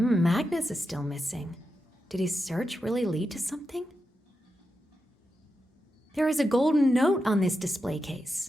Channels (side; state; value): both; normal; correlation 0.88